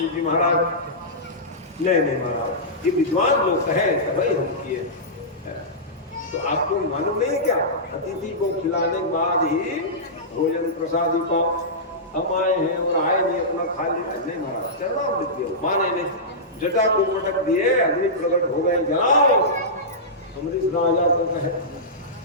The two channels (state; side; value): normal; both; correlation -0.15